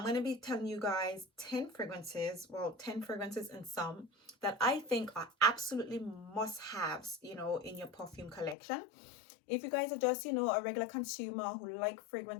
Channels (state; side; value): drops out; right; at 8.6 s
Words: going to be telling you guys 10 fragrances, well, 10 fragrances and some that I think are absolutely must-haves, in your perfume collection. If you guys are just, a regular consumer who like